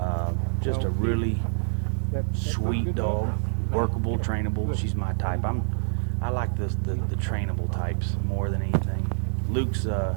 Just a really sweet dog, workable, trainable. She's my type. I like the trainable types more than anything. Luke's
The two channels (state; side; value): silent; left; digital silence